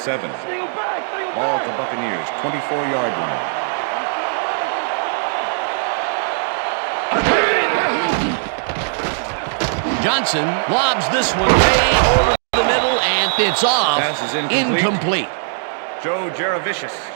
Steal back, steal Ball back. at the Buccaneers, 24-yard line. Johnson lobs this one way over the middle, and it's off. Pass is incomplete. Incomplete. Joe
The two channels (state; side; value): silent; left; digital silence